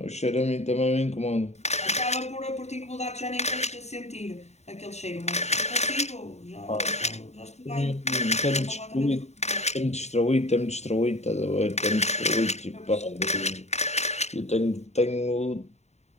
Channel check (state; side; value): late; right; 0.32 ms